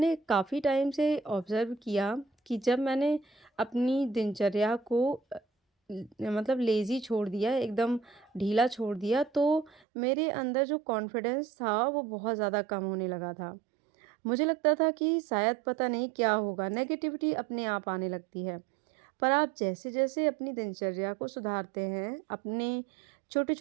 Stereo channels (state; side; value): drops out; left; at 9.8 s